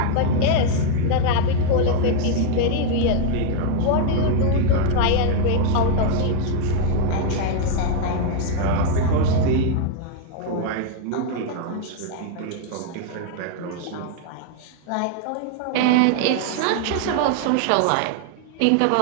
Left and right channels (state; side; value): different; both; correlation 0.00